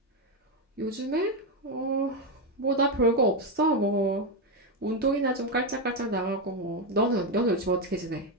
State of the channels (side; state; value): both; normal; correlation 0.07